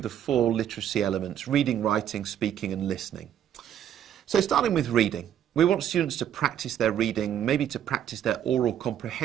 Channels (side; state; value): left; quieter; 10.1 dB